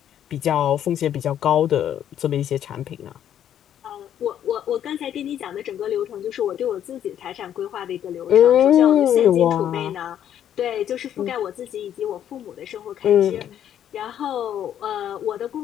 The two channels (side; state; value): right; quieter; 10.2 dB